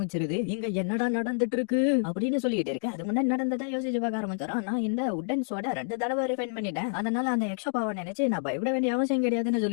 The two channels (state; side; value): silent; right; digital silence